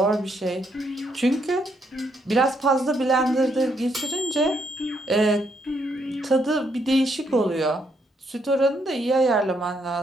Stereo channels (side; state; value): both; normal; correlation 0.75